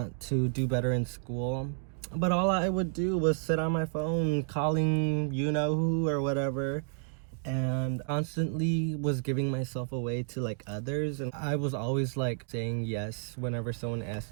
to do better in school. But all I would do was sit on my phone calling you-know-who or whatever, and constantly was giving myself away to others. And I was always saying yes whenever someone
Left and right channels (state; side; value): silent; left; digital silence